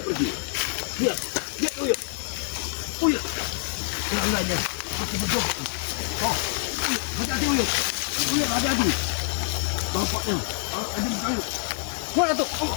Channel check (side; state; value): right; silent; digital silence